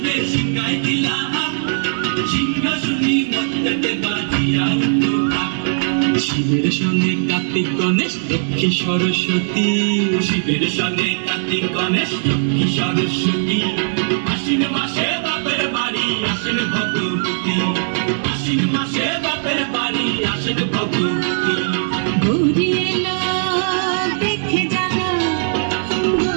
শিবের সঙ্গে কার্তিক গণেশ লক্ষ্মী সরস্বতী, শিবের সঙ্গে কার্তিক গণেশ লক্ষ্মী সরস্বতী। আশ্বিন মাসে বাপের বাড়ি আসেন ভগবতী, আশ্বিন মাসে বাপের বাড়ি আসেন ভগবতী। গৌরী এলো দেখে জানো,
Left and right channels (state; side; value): silent; left; 67 dB below the other